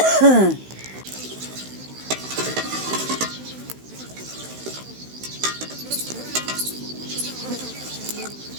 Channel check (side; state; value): left; late; 16 ms